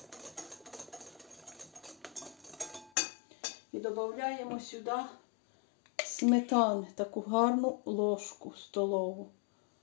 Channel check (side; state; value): right; drops out; at 2.9 s